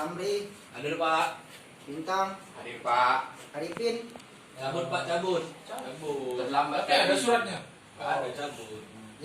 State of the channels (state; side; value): identical; both; correlation 1.00